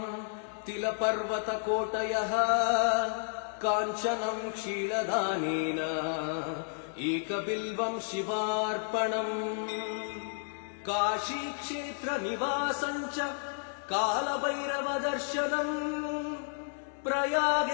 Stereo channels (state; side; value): silent; right; 57 dB below the other